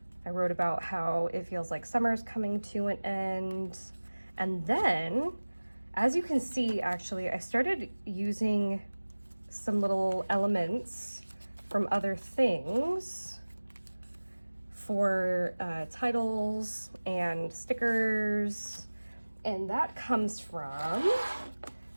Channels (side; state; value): both; inverted; correlation -1.00